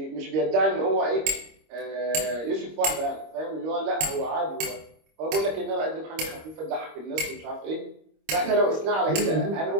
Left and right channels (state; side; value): late; left; 26 ms